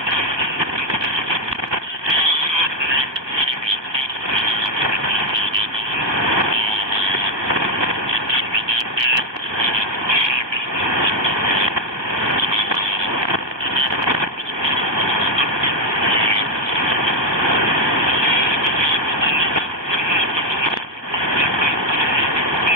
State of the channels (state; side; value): late; left; 1.2 ms